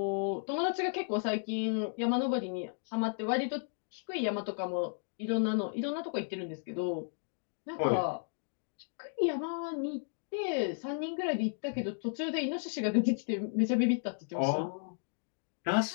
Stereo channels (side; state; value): right; silent; digital silence